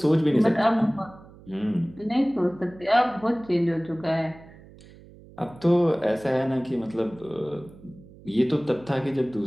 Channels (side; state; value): right; noise; hum, 22 dB below the sound